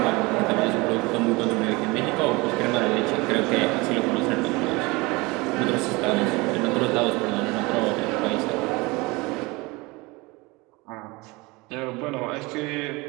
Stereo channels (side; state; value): left; quieter; 24.1 dB